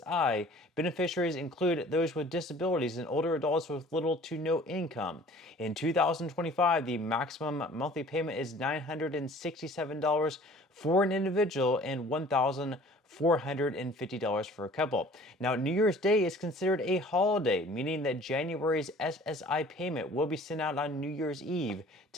beneficiaries include those with disabilities and older adults with little to no income. In 2025, the maximum monthly payment is $967 for an individual and $1,450 for a couple. Now, New Year's Day is considered a holiday, meaning that January's SSI payment will be sent out on New Year's Eve,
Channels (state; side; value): normal; both; correlation 0.50